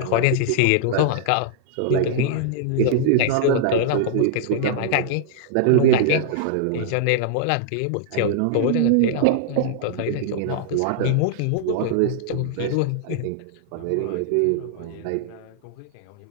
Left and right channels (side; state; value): both; different; correlation -0.01